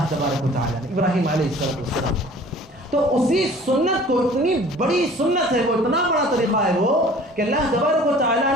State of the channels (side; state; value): both; normal; correlation 0.48